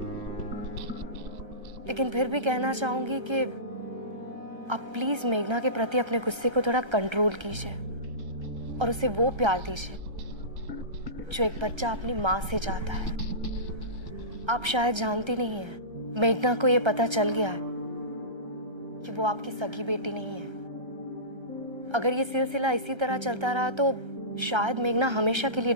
लेकिन फिर भी कहना चाहूंगी कि आप प्लीज मेघना के प्रति अपने गुस्से को थोड़ा कंट्रोल कीजिए और उसे वो प्यार दीजिए जो एक बच्चा अपनी माँ से चाहता है। आप शायद जानती नहीं है, मेघना को ये पता चल गया है कि वो आपकी सगी बेटी नहीं है। अगर ये सिलसिला इसी तरह चलता रहा तो शायद मेघना हमेशा के लिए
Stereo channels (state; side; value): late; left; 1.3 ms